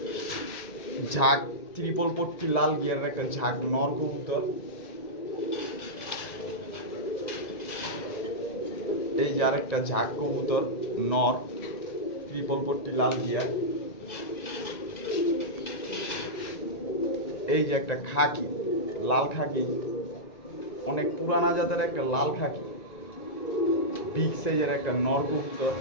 ঝাঁক ত্রিপল পট্টি, লাল গিয়ারের একটা ঝাঁক নর কবুতর। এই যে আরেকটা ঝাঁক কবুতর নর, ট্রিপল পট্টি, লাল গিয়ার। এই যে একটা খাকি, লাল খাকি, অনেক পুরানা জাতের একটা লাল খাকি, বিগ সাইজের একটা নর কবুতর।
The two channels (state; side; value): late; right; 1.9 ms